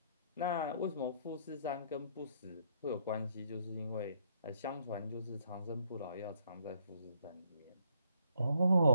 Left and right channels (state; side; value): inverted; both; correlation -0.69